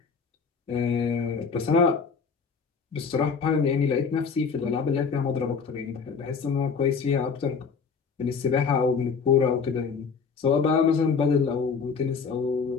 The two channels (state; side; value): quieter; right; 5.6 dB